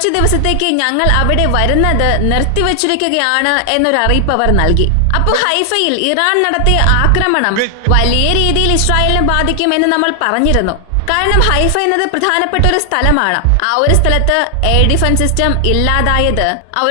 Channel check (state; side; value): different; both; correlation 0.00